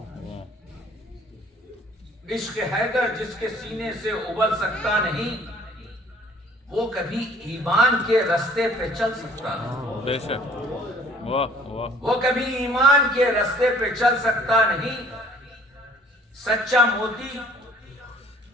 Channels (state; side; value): normal; both; correlation 0.55